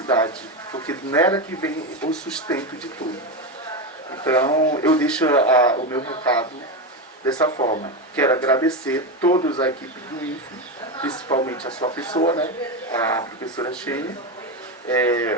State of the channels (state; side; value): normal; both; correlation 0.14